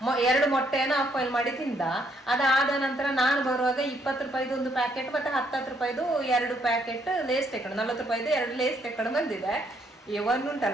2 ಮೊಟ್ಟೆಯನ್ನು ಆಫ್ ಆಯಿಲ್ ಮಾಡಿ ತಿಂದ. ಅದಾದ ನಂತರ ನಾನು ಬರುವಾಗ 20 ರೂಪಾಯಿದು 1 ಪ್ಯಾಕೆಟ್ ಮತ್ತೆ 10 ರೂಪಾಯಿದು 2 ಪ್ಯಾಕೆಟ್ ಲೇಸ್ ತೆಕೊಂಡು, 40 ರೂಪಾಯಿದು 2 ಲೇಸ್ ತೆಕೊಂಡು ಬಂದಿದೆ.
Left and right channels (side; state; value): both; normal; correlation 0.71